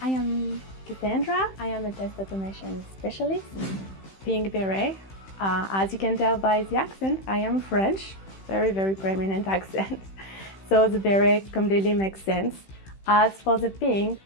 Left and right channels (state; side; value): late; right; 15 ms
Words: I am Cassandra. I am a test automation specialist. Pink beret. As you can tell by the accent, I am French. Very prominent accent. So the beret completely makes sense. As for the pink,